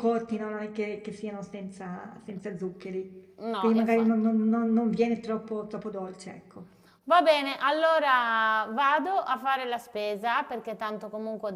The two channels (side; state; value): both; identical; correlation 1.00